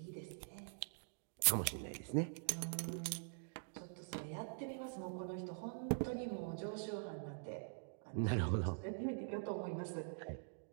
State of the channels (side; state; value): left; silent; digital silence